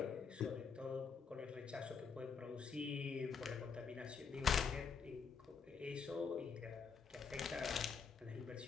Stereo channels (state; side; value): quieter; right; 5.8 dB